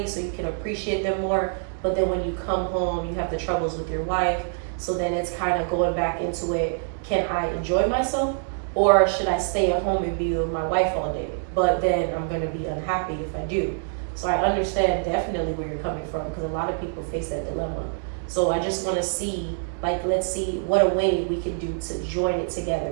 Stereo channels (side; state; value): left; silent; digital silence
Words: so you can appreciate them more. But then when you come home, you have the troubles with your wife. So then it's kind of going back into it. Can I enjoy myself? Or should I stay at home and be with my wife all day? But then I'm going to be unhappy if I do. So I understand definitely where you're coming from, because a lot of people face that dilemma. So I just want to see, like, let's see what a way we can do to join it